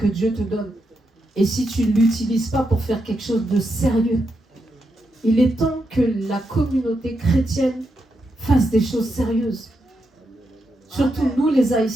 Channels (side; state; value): both; normal; correlation 0.84